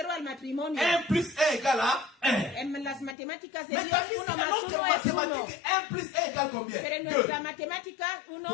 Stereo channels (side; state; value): right; drops out; at 3.2 s